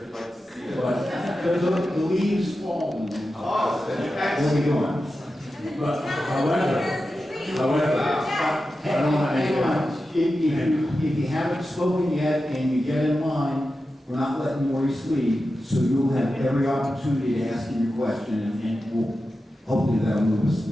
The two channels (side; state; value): both; normal; correlation 0.92